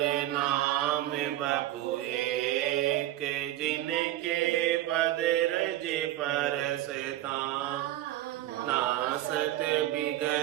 नाम बपु एक जिनके पद रज परसता नासत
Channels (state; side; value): quieter; left; 14.2 dB